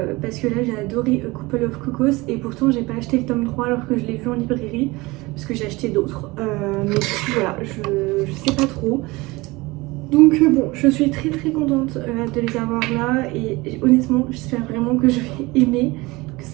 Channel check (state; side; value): quieter; left; 22.4 dB